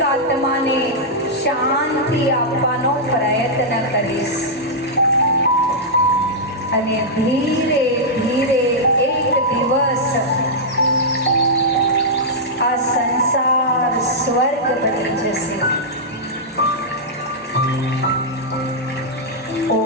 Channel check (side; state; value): both; normal; correlation -0.09